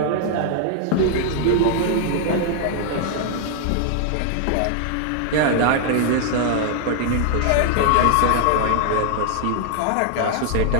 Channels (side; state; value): both; different; correlation 0.00